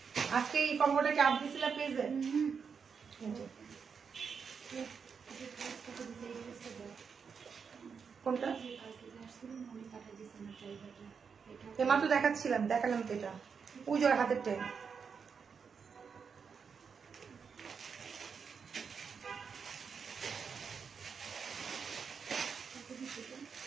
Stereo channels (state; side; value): quieter; left; 6.1 dB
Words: আজকে এই কম্বোটা কি আপনি দিছিলেন পেজে? কোনটা এমাত্র দেখাচ্ছিলাম, দেখালাম তো, এটা পুজোর হাতের টাইম।